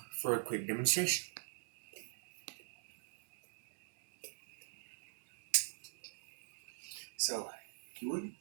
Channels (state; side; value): silent; left; digital silence